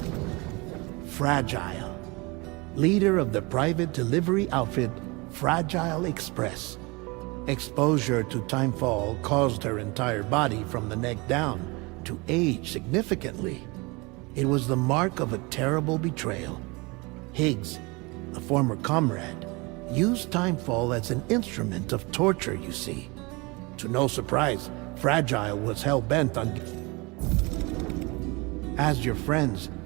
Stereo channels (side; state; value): left; quieter; 26.4 dB